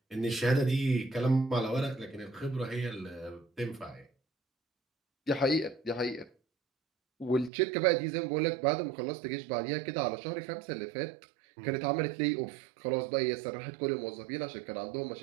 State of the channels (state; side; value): drops out; left; at 7.5 s